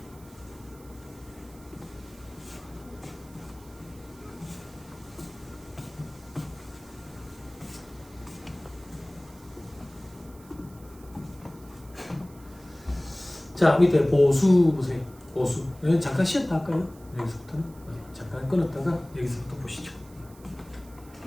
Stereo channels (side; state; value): right; noise; hiss, 24 dB below the sound